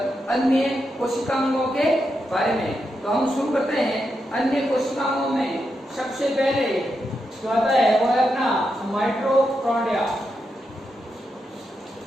कोशिकांगों के बारे में। तो हम शुरू करते हैं। अन्य कोशिकाओं में सबसे पहले जो आता है वो है अपना माइटोकॉन्ड्रिया।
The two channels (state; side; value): normal; both; correlation 0.85